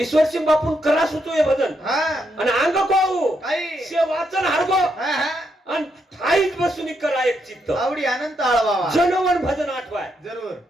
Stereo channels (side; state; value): both; normal; correlation 0.79